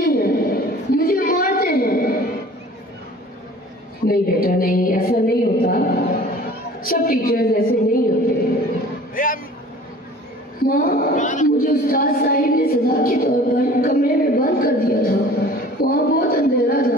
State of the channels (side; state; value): both; normal; correlation 0.46